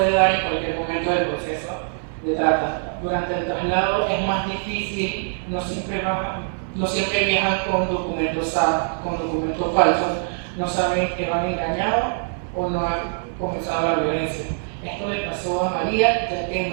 dar en cualquier momento del proceso de trata. Durante el traslado es más difícil, no siempre viajan con documentos falsos, no saben que van engañados o no han comenzado la violencia. Esto le pasó a María, ya que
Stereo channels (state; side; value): silent; left; 63 dB below the other